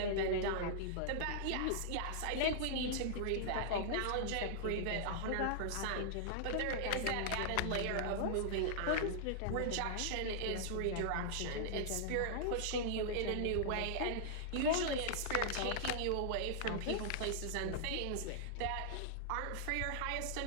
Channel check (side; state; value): both; different; correlation -0.01